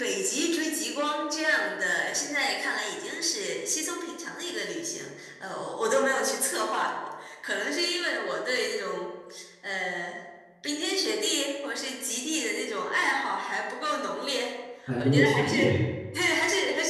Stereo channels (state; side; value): identical; both; correlation 1.00